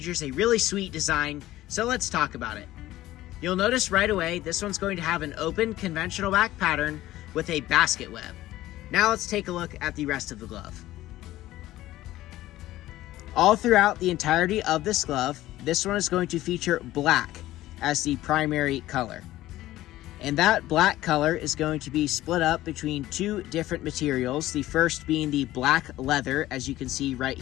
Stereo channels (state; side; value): quieter; right; 15.5 dB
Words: a really sweet design, so let's talk about it. You'll notice right away, this one's going to have an open conventional back pattern with a basket web. Now let's take a look at the rest of the glove. All throughout the entirety of this glove, this one is going to feature black as the primary color. And that black color is going to be split up between two different materials. The first being the black leather, as you can see right